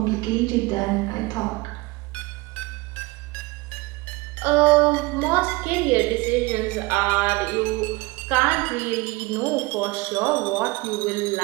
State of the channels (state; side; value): quieter; left; 23.1 dB